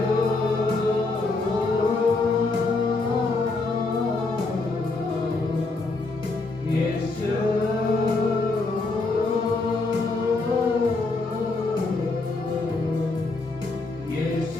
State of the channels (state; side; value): quieter; right; 3.5 dB